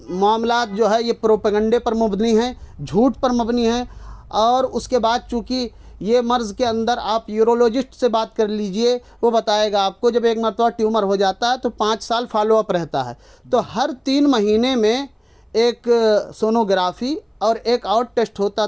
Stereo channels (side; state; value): both; identical; correlation 1.00